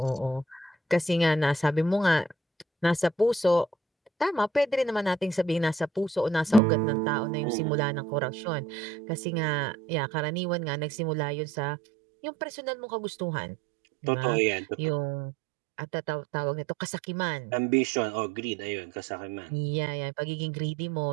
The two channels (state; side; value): drops out; left; at 6.6 s